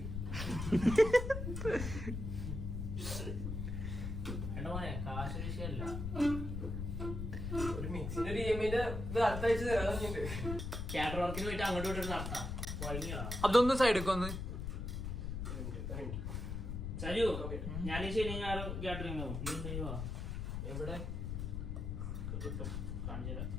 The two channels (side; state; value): left; noise; rumble, 4 dB below the sound